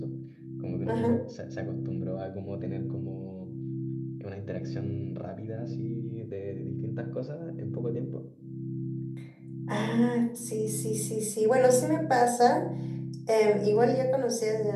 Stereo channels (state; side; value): identical; both; correlation 1.00